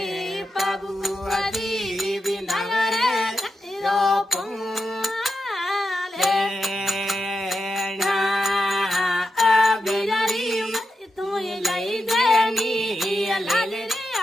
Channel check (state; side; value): normal; both; correlation 0.88